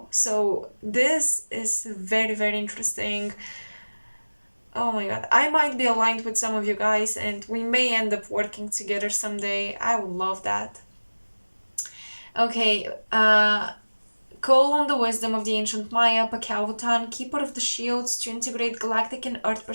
So this is very, very interesting. Oh my god, I might be aligned with some of you guys, and we may end up working together someday. I would love that. Okay, Call on the wisdom of the ancient Maya, Pakautan, keeper of the shields, to integrate galactic and earth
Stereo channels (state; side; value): inverted; both; correlation -1.00